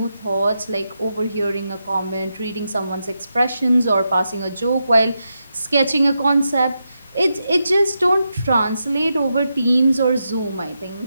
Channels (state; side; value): inverted; both; correlation -0.86